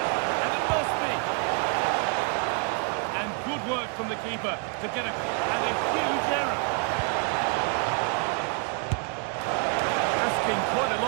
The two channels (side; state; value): left; quieter; 39.0 dB